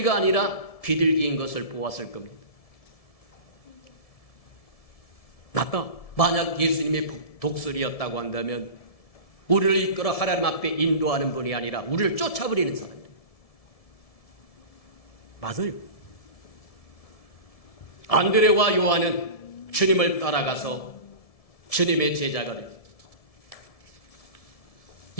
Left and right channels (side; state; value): right; late; 1.7 ms